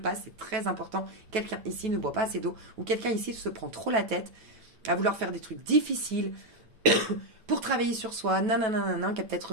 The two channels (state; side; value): late; left; 9.2 ms